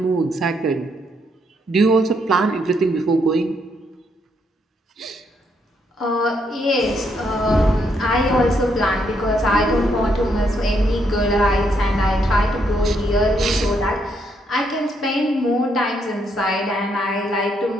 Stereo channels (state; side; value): normal; both; correlation 0.75